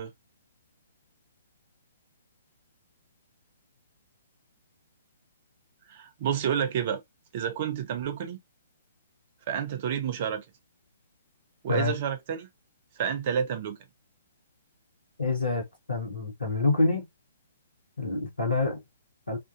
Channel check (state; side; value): inverted; both; correlation -0.56